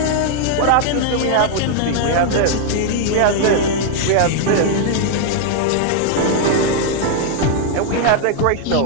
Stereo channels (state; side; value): different; both; correlation 0.00